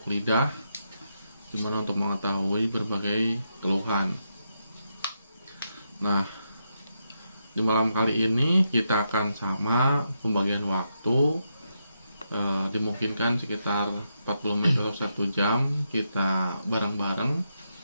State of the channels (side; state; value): both; inverted; correlation -0.83